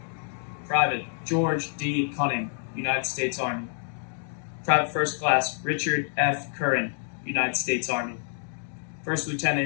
Private George D. Cunning, United States Army. Private First Class Richard F. Curran, United States Army. First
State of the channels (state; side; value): silent; right; digital silence